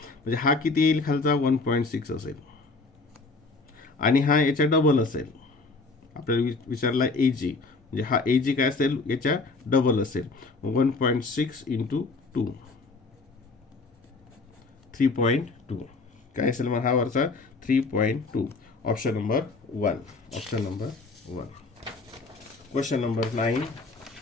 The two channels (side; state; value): right; quieter; 3.8 dB